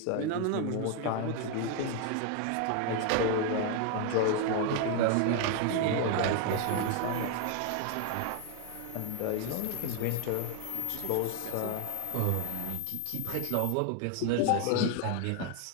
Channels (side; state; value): both; different; correlation 0.00